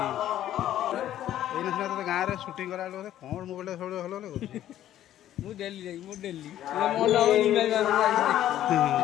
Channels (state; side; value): quieter; right; 12.2 dB